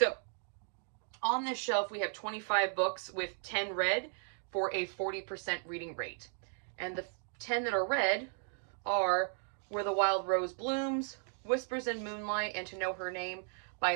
on this shelf, we have 25 books with 10 read for a 40% reading rate. And the 10 that are read are Where the Wild Rose Blooms, Whispers in Moonlight, and To Know Her Name by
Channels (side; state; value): left; silent; 54 dB below the other